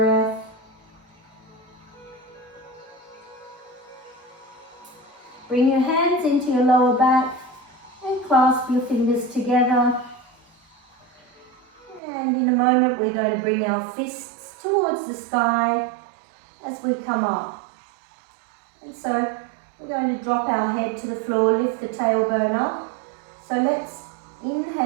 Bring your hands into your lower back and clasp your fingers together. And in a moment we're going to bring our fists towards the sky as we come up. And so we're going to drop our head to the floor, lift the tailbone up. So let's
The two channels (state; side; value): drops out; left; at 12.0 s